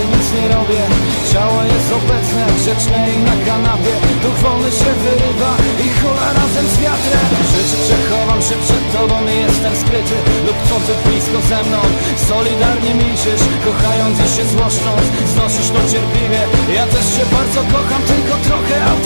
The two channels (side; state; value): both; inverted; correlation -1.00